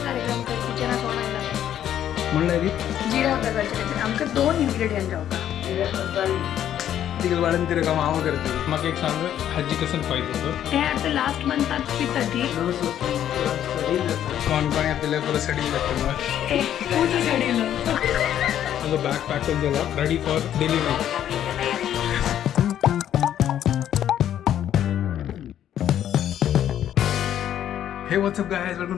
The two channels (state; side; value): quieter; right; 10.7 dB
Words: म्हणलं रे जिरा प्रकारचे आमकां 2 इंग्रेडियंट जावपा तिकडे वाढून तिथे काम आव करते मग एक सांग हाजी कसं पाहिजे होतं ते आता लास्ट मंथात पिता ती कोण कोण आपल्याला पुरं सडी लागतं मग पूर्ण सडीलं माझं बॅग पॅक करून झाला रेडी फॉर डिलिव्हरी हे what's up guys welcome